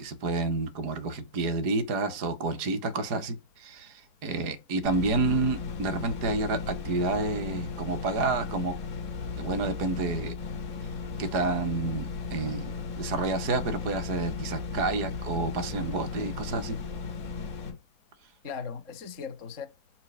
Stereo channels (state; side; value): late; left; 4.8 ms